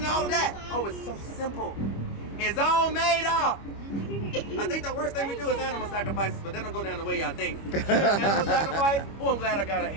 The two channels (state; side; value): late; right; 25 ms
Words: to all of that? Oh, it's so simple. It's all made up. I think the worst thing we do is animal sacrifices, but they don't go down the way y'all think. Animal sacrifice? Oh, I'm glad I got a